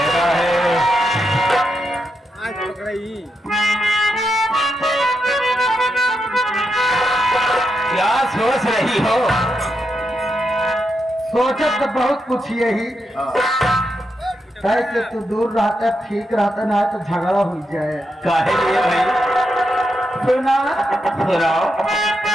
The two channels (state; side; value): normal; both; correlation 0.84